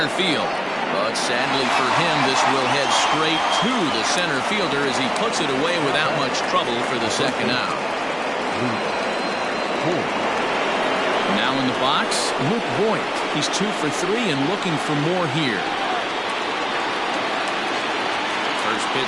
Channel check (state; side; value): identical; both; correlation 1.00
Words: field. But sadly for him, this will head straight to the center fielder as he puts it away without much trouble for the second out. Now in the box, Luke Voigt. He's 2 for 3 and looking for more here. First